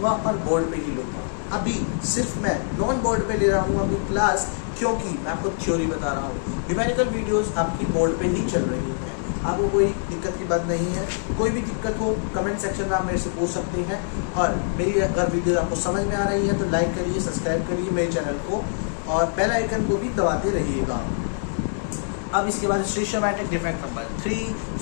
और बोर्ड पे ही लूँगा। अभी सिर्फ मैं नॉन बोर्ड पे ले रहा हूँ अभी क्लास, क्योंकि मैं आपको थ्योरी बता रहा हूँ। न्यूमेरिकल वीडियोस आपकी बोर्ड पे ही चल रही हैं, आपको कोई दिक्कत की बात नहीं है। कोई भी दिक्कत हो कमेंट सेक्शन में आप मेरे से पूछ सकते हैं। और मेरी अगर वीडियो आपको समझ में आ रही है तो लाइक करिए, सब्सक्राइब करिए मेरे चैनल को और बेल आइकन को भी दबाते रहिएगा। अब इसके बाद स्टीशियोमेट्रिक डिफेक्ट नंबर 3,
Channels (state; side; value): silent; right; digital silence